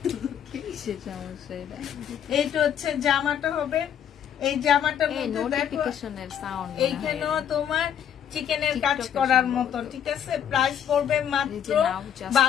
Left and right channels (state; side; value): quieter; right; 9.1 dB